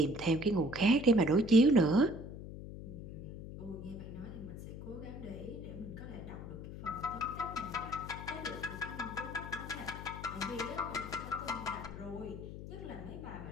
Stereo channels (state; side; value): noise; left; hum, 10 dB below the sound